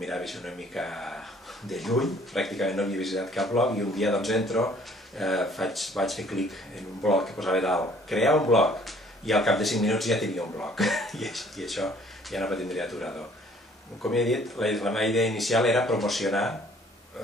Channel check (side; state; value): both; normal; correlation 0.58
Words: així una mica de lluny, pràcticament no havia visitat cap blog, i un dia doncs entro, vaig fer clic en un blog que posava dalt, crear un blog, i al cap de 5 minuts ja tenia un blog, i això ja no tindria aturador. Com he dit, la meva idea inicial era promocionar